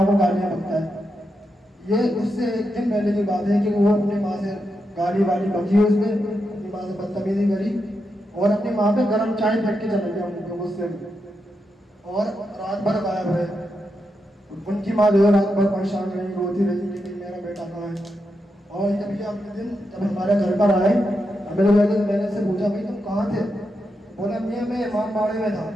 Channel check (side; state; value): both; normal; correlation 0.85